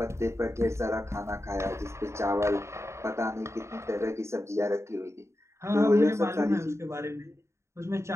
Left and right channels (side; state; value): left; late; 0.13 ms